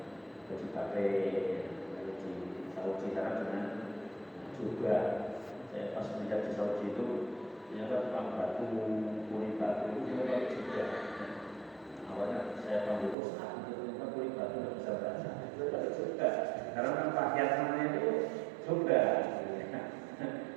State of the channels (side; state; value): left; drops out; at 13.2 s